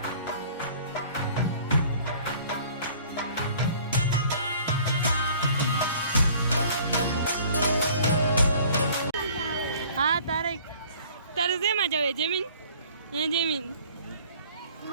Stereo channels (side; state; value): both; inverted; correlation -0.52